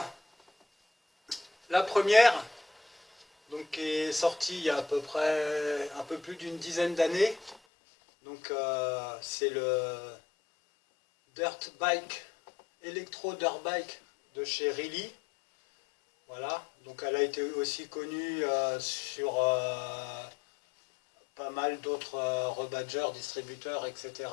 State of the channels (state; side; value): drops out; right; at 7.6 s